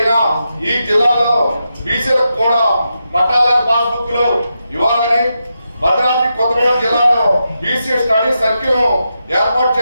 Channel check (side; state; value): both; inverted; correlation -0.87